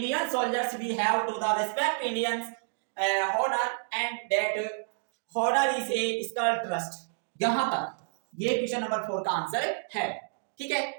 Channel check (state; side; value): silent; left; digital silence